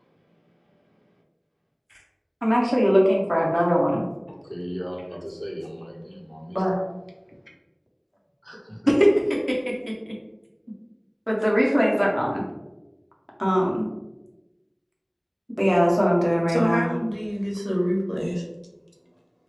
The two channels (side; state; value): both; identical; correlation 1.00